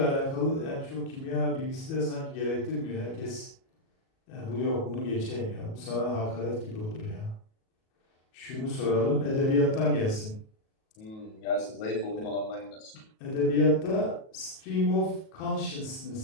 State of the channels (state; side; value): late; right; 37 ms